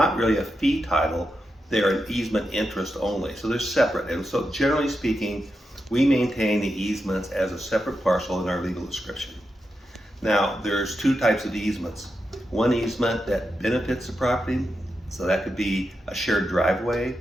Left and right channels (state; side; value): normal; both; correlation 0.87